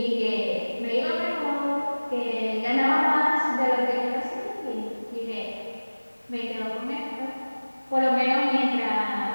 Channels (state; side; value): inverted; both; correlation -1.00